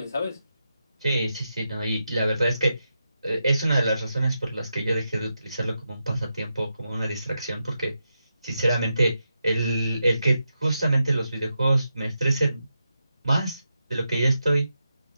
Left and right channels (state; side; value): inverted; both; correlation -0.87